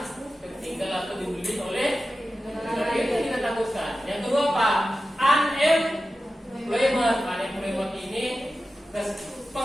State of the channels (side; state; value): both; normal; correlation 0.94